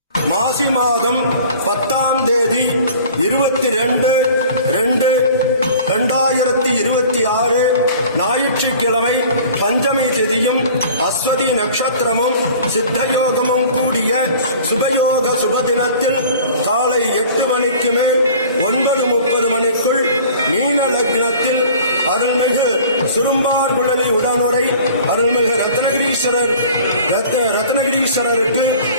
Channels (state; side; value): inverted; both; correlation -0.46